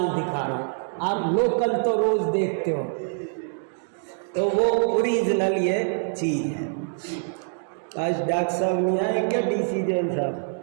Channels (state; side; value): silent; left; digital silence